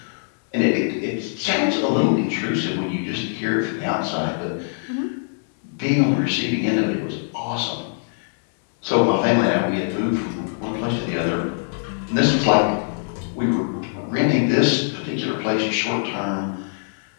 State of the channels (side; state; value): right; silent; digital silence